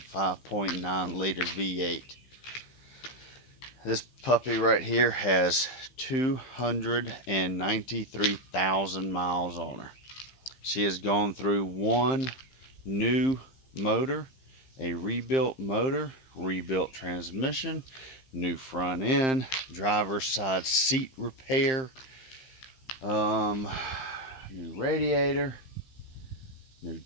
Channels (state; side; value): late; right; 15 ms